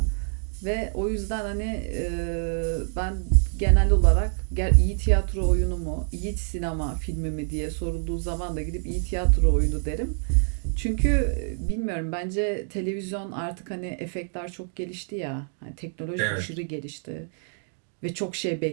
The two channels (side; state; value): left; silent; digital silence